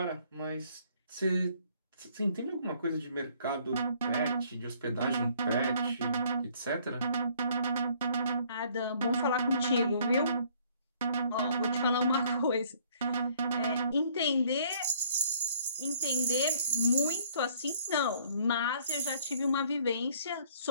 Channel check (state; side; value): inverted; both; correlation -0.62